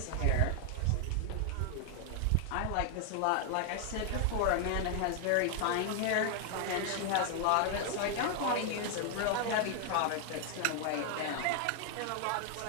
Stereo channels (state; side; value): different; both; correlation 0.00